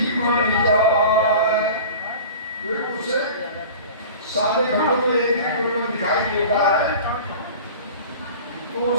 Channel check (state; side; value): inverted; both; correlation -0.39